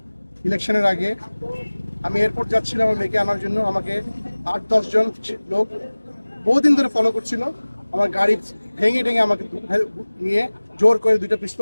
ইলেকশনের আগে আমি এয়ারপোর্ট যাচ্ছিলাম আমার মেয়েকে আনার জন্য। আমাকে 8-10 জন লোক বহুদিন ধরে ফলো করছিল। আমার গাড়ি ভেঙে আমাকে নিয়ে জোর করে 2টা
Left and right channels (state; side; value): inverted; both; correlation -1.00